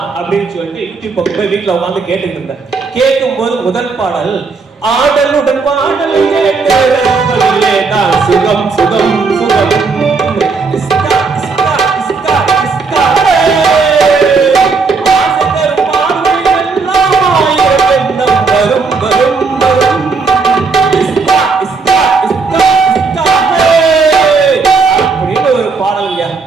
அப்படின்னு சொல்லிட்டு யூடியூப் பக்கம் போய் வீட்டுல உட்காந்து கேட்டுட்டு இருந்தேன். கேட்கும் போது முதல் பாடல், ஆடலுடன் பாடல் சுகம் சுகம் சுகம்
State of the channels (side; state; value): left; quieter; 4.6 dB